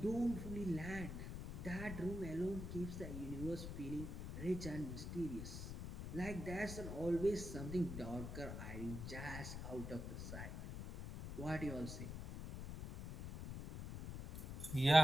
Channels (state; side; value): noise; left; rumble, 6 dB below the sound